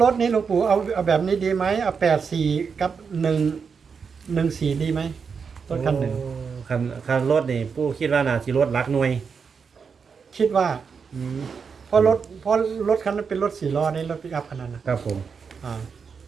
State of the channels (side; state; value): left; quieter; 5.9 dB